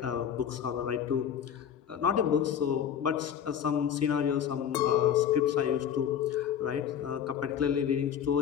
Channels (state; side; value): quieter; right; 8.7 dB